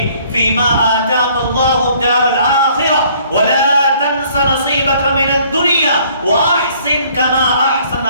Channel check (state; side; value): inverted; both; correlation -0.59